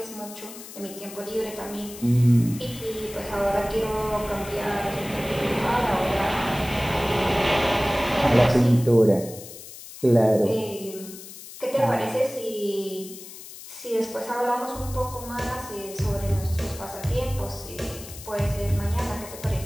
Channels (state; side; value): noise; left; hiss, 14 dB below the sound